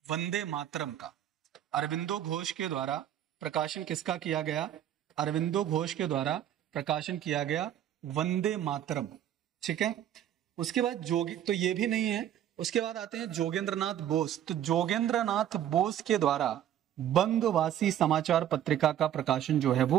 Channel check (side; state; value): left; quieter; 11.0 dB